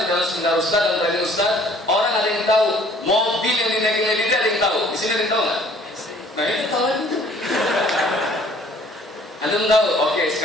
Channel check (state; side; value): normal; both; correlation 0.56